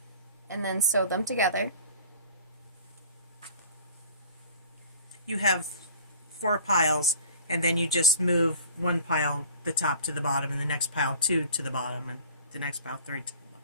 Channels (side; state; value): both; inverted; correlation -0.46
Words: and then sew them together. You have 4 piles, and then you just move one pile, the top to the bottom, and the next pile 2 to the bottom, and the next pile 3